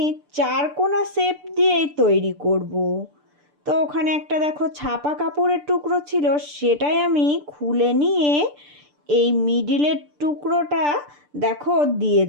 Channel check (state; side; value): late; left; 6.8 ms